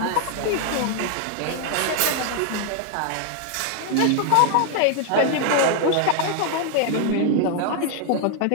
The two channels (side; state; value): both; different; correlation 0.00